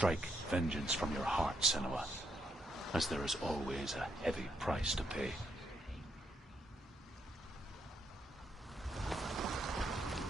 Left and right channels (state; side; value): normal; both; correlation 0.77